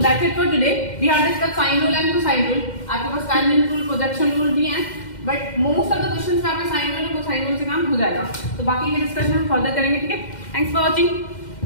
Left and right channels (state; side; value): late; right; 2.1 ms